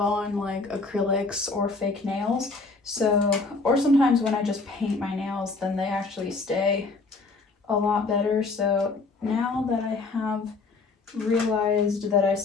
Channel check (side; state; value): right; quieter; 3.8 dB